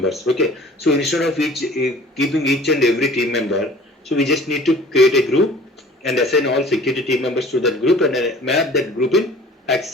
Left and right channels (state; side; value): normal; both; correlation 0.48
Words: Okay, so instead of keeping each and every team member, so we just need to create a group and assign all security team members to that group and map that group in